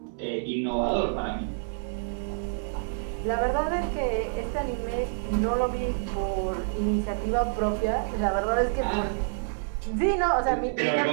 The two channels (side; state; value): left; silent; digital silence